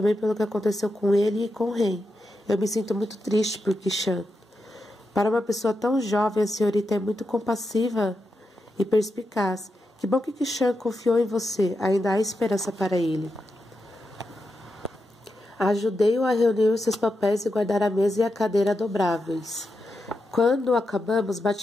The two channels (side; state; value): both; normal; correlation 0.87